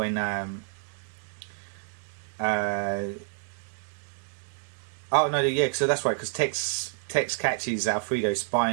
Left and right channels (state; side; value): silent; left; 59 dB below the other